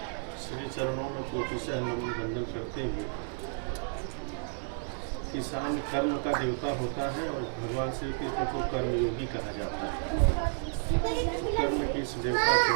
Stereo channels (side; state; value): left; silent; digital silence